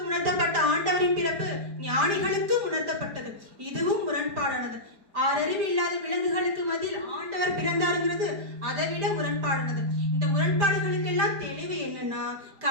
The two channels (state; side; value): late; left; 5.0 ms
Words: உணர்த்தப்பட்ட ஆண்டவரின் பிறப்பு ஞானிகளுக்கு உணர்த்தப்பட்டது. இதுவும் முரண்பாடானது. 6 அறிவு இல்லாத விலங்குகளுக்கு மத்தியில் ஆண்டவர் பிறந்தாருங்கிறது அதை விட முரண்பாடானது. இந்த முரண்பாடுகளுக்கு எல்லாம் தெளிவு என்னன்னா,